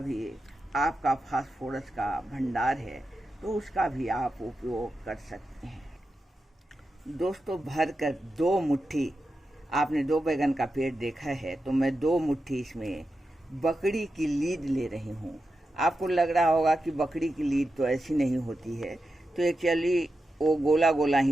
आपका फास्फोरस का भंडार है, तो उसका भी आप उपयोग कर सकते हैं। दोस्तों भर कर 2 मुट्ठी, आपने 2 बैगन का पेड़ देखा है, तो मैं 2 मुट्ठी इसमें बकरी की लीद ले रही हूँ। आपको लग रहा होगा कि बकरी की लीद तो ऐसी नहीं होती है, तो एक्चुअली वो गोला गोला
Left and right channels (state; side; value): normal; both; correlation 0.89